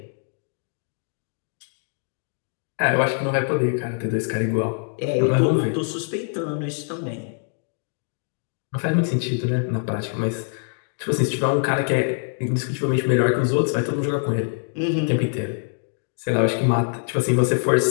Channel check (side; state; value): right; silent; digital silence